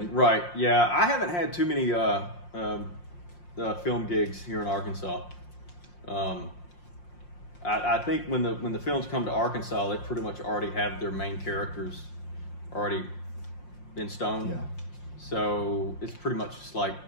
Right. Yeah. I haven't had too many film gigs here in Arkansas. I think when the films come to Arkansas, they pretty much already have their main characters already in stone. Yeah. So it's pretty much just like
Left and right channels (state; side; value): late; right; 5.6 ms